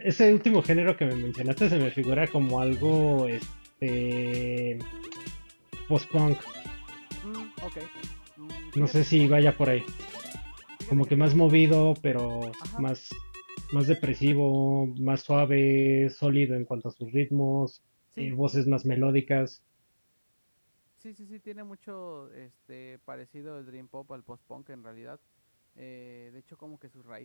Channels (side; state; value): both; inverted; correlation -1.00